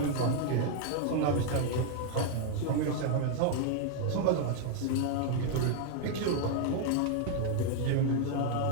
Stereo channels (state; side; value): different; both; correlation 0.00